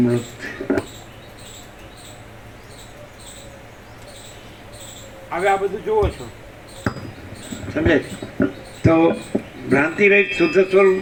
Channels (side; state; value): both; identical; correlation 1.00